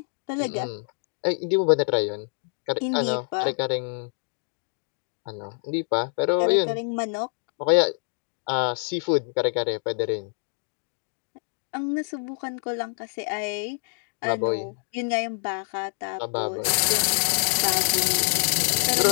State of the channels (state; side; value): silent; right; 61 dB below the other